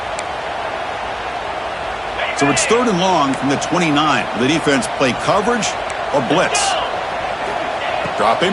So it's third and long from the 29. Will the defense play coverage or blitz? Dropping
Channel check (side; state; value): both; identical; correlation 1.00